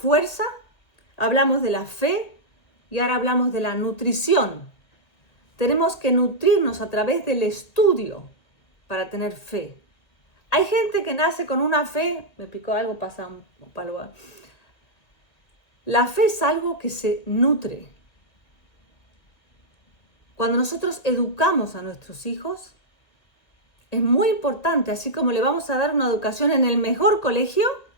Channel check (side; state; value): right; late; 1.8 ms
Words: hablamos de la fe y ahora hablamos de la nutrición. Tenemos que nutrirnos a través del estudio para tener fe. Hay gente que nace con una fe, me picó algo, pasa un palo. La fe es algo que se nutre. Cuando nosotros educamos a nuestros hijos, es muy importante, así como le vamos a dar una educación en el mejor colegio,